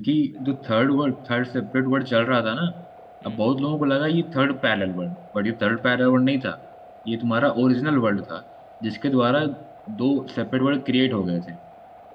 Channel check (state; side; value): identical; both; correlation 1.00